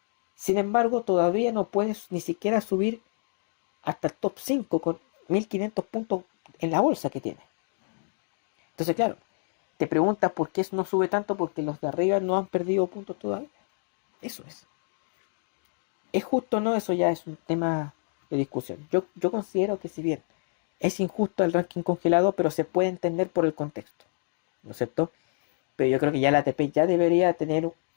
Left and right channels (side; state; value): right; silent; digital silence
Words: Sin embargo, todavía no puedes ni siquiera subir hasta el top 5 con 1500 puntos en la bolsa que tiene. Entonces, claro, te preguntas por qué eso no sube tanto, porque los de arriba no han perdido puntos todavía. Eso es. ¿Es justo o no? Eso ya es un tema de discusión. Yo considero que si bien es injusto el ranking congelado, pero se puede entender por el contexto, ¿no es cierto? Pero yo creo que ya la ATP ya debería tener